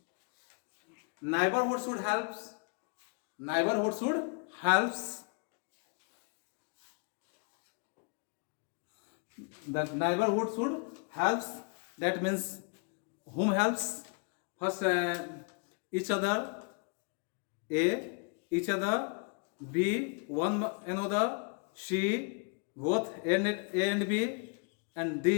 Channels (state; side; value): quieter; right; 38.1 dB